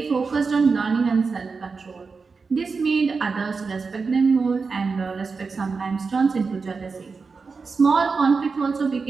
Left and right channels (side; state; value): left; quieter; 4.7 dB